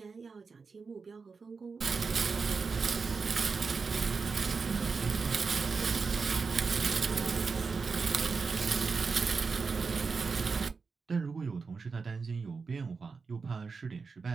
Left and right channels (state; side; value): quieter; left; 4.8 dB